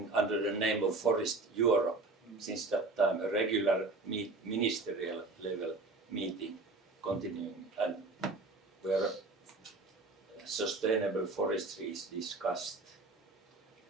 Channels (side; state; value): left; quieter; 3.4 dB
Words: under the name of Forest Europe. Since that time, a regular ministerial level meeting continuing, and where sustainable forestry is discussed.